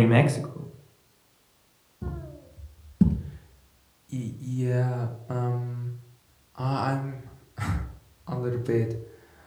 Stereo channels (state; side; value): identical; both; correlation 1.00